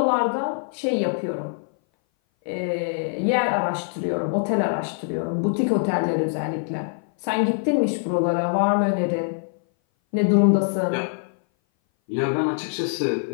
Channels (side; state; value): right; silent; 59 dB below the other